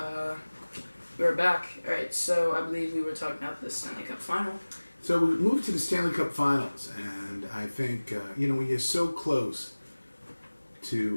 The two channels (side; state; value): both; inverted; correlation -1.00